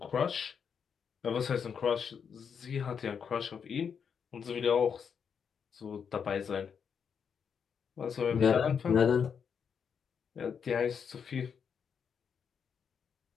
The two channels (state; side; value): quieter; right; 6.9 dB